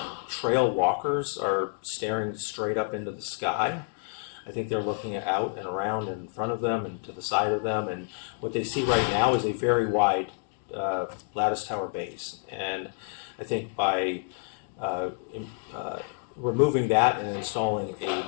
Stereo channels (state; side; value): silent; right; 59 dB below the other